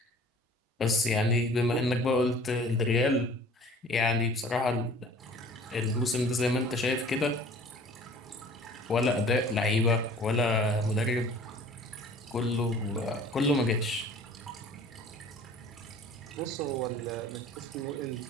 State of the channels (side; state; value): both; normal; correlation 0.48